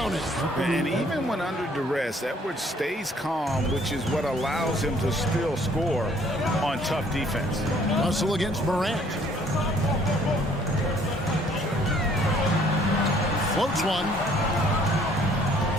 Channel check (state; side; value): normal; both; correlation 0.60